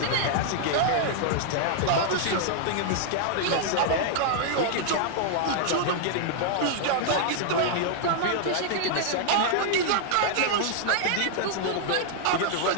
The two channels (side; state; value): both; different; correlation -0.01